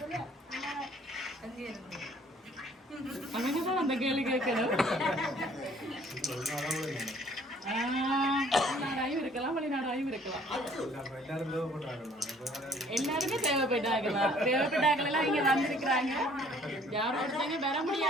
அவங்கதான் அந்த கேள்வி கேட்கணும். உள்நாடாயும் இருக்கலாம், வெளிநாடாயும் இருக்கலாம். எல்லாருமே தேவைப்பட்டாங்கலாம். தேவைப்பட்டாங்களெல்லாம் இங்க வந்திருக்கிறாங்க. யாரும் ஒருத்தங்க வர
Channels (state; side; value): normal; both; correlation 0.57